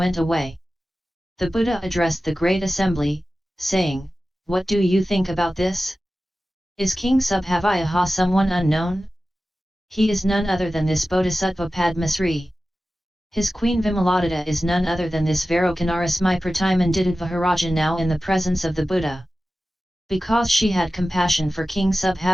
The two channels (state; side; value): normal; both; correlation 0.95